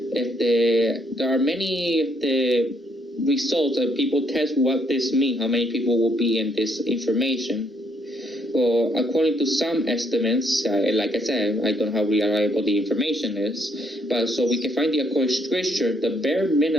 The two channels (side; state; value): both; normal; correlation 0.71